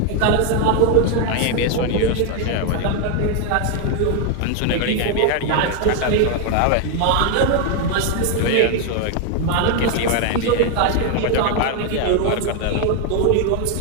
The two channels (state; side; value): different; both; correlation 0.01